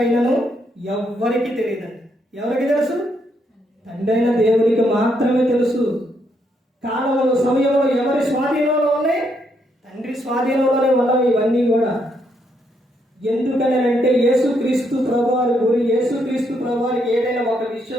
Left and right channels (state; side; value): normal; both; correlation 0.76